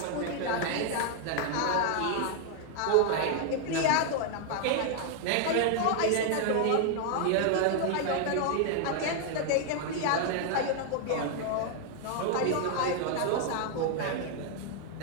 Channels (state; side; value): different; both; correlation 0.00